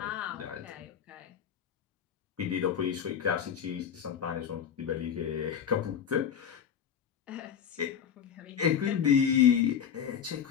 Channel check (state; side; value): quieter; right; 8.3 dB